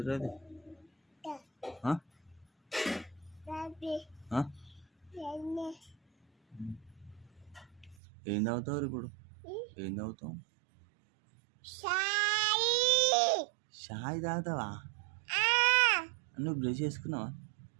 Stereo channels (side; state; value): left; drops out; at 8.0 s